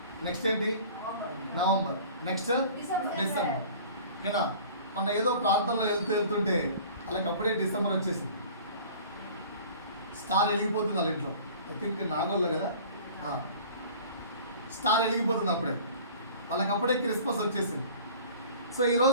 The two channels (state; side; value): inverted; both; correlation -0.45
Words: నెక్స్ట్ ఏంటి? నవంబర్. Next December. ఓకేనా? మన ఏదో ప్రాంతంలో వెళ్తుంటే అలాగప్పుడే డిసెంబర్ వచ్చేసింది. స్టార్ వెలిగిపోతుంది వాళ్ళ ఇంట్లో. ఐ థింక్ నాగోల్లో కదా, స్టార్ వెలిగిపోతుంది అప్పుడే. వాళ్ళకప్పుడే క్రిస్మస్ వచ్చేసింది. సో